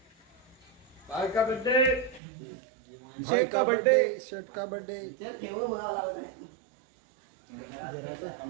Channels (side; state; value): left; drops out; at 2.2 s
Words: भाई का बर्थडे, भाई का बर्थडे, शर्ट का बर्थडे।